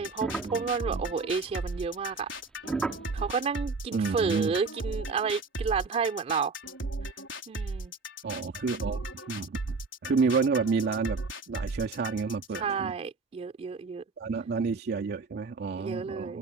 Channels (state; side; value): quieter; left; 4.3 dB